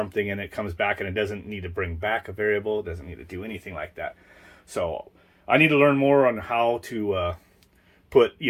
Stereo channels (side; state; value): both; identical; correlation 1.00